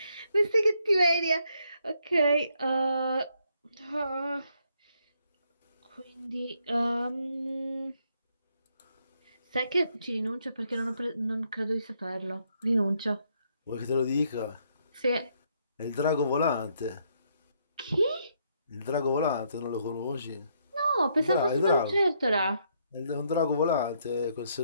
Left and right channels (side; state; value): both; inverted; correlation -0.73